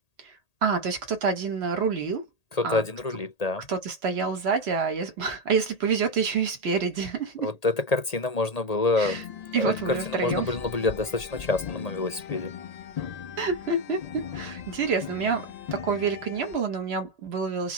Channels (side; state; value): right; late; 1.8 ms